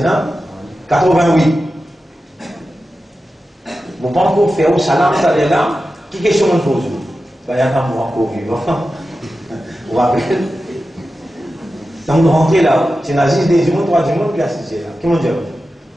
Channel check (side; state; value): both; normal; correlation 0.92